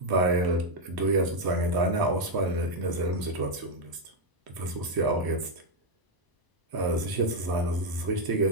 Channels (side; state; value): left; late; 1.0 ms